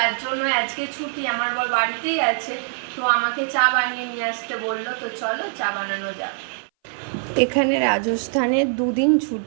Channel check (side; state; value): left; silent; 60 dB below the other